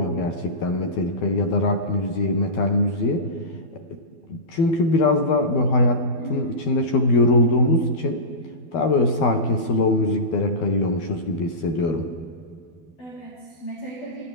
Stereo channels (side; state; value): right; late; 12 ms